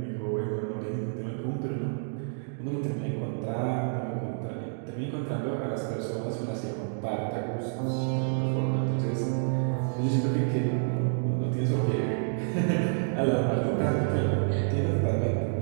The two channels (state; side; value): silent; left; digital silence